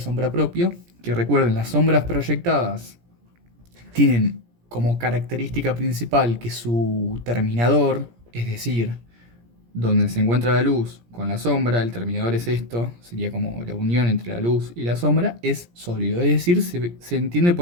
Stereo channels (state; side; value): late; left; 17 ms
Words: propia, que recuerden, las sombras proyectadas tienen como característica principal que su terminador, es decir, donde se encuentra la luz con la sombra, el terminador es esto, sería como la unión entre la luz y la sombra, es sólido. Es decir, se entiende